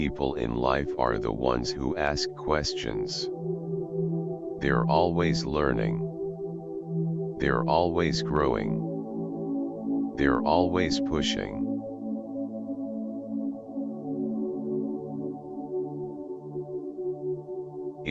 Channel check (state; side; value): identical; both; correlation 1.00